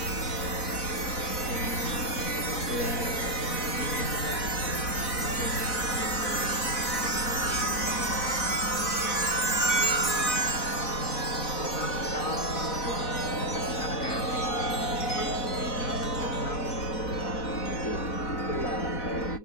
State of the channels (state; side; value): late; right; 4.1 ms